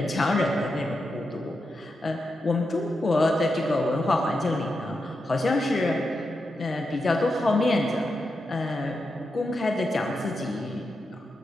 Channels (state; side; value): normal; both; correlation 0.87